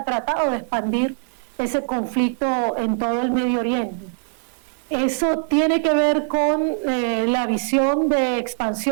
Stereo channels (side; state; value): left; silent; 59 dB below the other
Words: tratado de expandir ese conflicto en todo el Medio Oriente. ¿Eso tiene que ver con la visión de